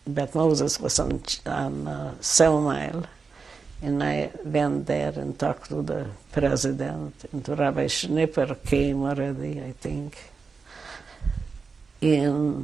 Beth Moses was on 7 Mile, and I went there and talked to the president, and to Rabbi Schnipper came already, I think.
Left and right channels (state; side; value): quieter; left; 4.9 dB